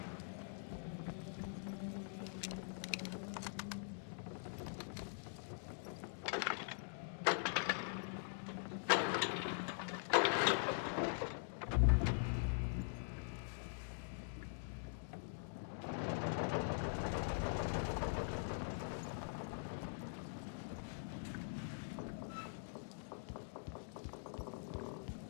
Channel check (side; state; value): right; silent; digital silence